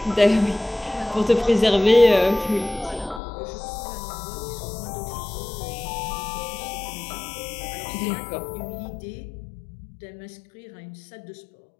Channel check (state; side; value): drops out; right; at 3.2 s